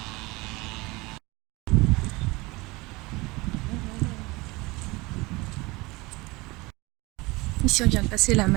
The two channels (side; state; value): left; quieter; 23.5 dB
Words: Ici on vient de passer la